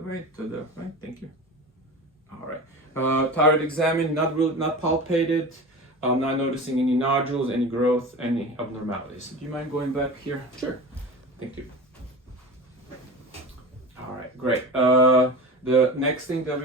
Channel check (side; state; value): both; normal; correlation 0.32